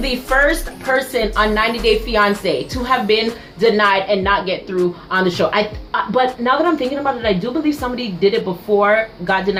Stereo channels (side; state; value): both; identical; correlation 1.00